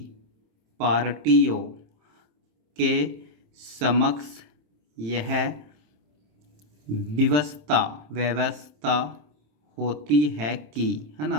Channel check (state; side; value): late; left; 27 ms